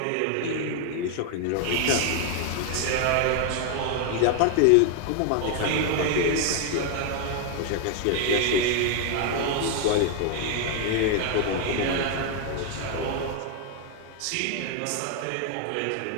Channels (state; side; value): different; both; correlation 0.01